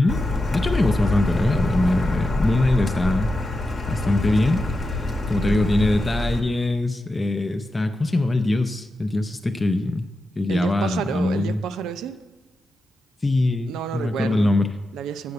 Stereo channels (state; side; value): normal; both; correlation 0.90